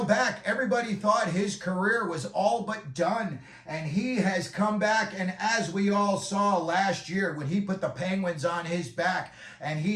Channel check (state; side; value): identical; both; correlation 1.00